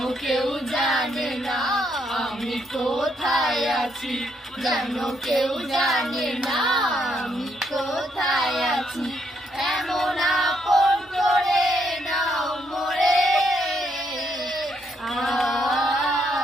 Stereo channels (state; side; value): normal; both; correlation 0.75